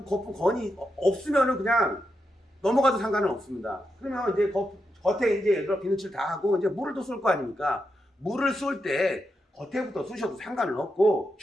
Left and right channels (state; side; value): normal; both; correlation 0.85